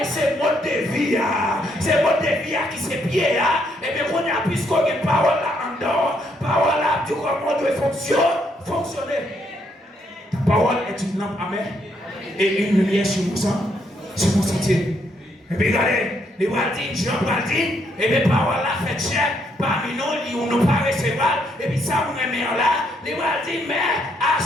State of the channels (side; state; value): both; normal; correlation 0.73